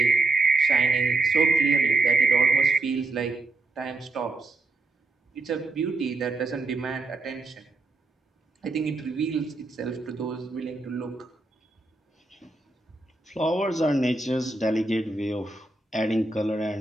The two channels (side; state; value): left; quieter; 3.3 dB